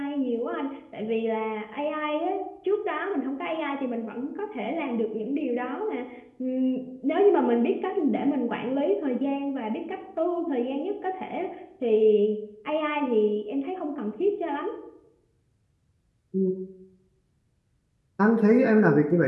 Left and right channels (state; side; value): identical; both; correlation 1.00